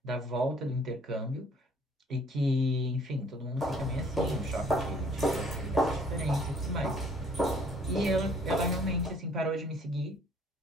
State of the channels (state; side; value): normal; both; correlation 0.58